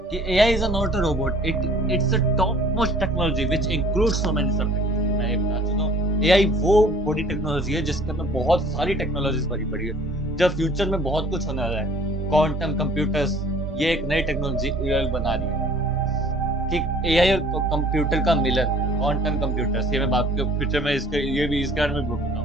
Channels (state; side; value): normal; both; correlation 0.53